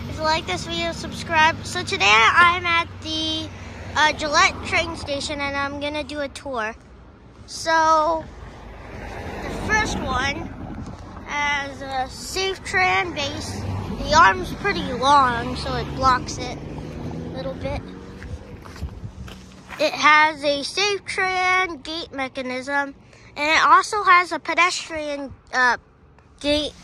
If you like this video, subscribe. So today I'm at the Gillette train station and I'm gonna do a tour. So the first one has a safe tran base. The arm's pretty long, so it blocks it a little bit. It has a safe tran gate mechanism, and it also has a pedestrian gate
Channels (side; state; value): both; identical; correlation 1.00